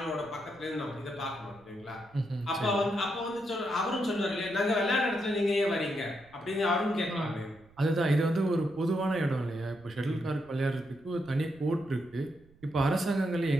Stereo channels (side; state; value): right; noise; rumble, 27 dB below the sound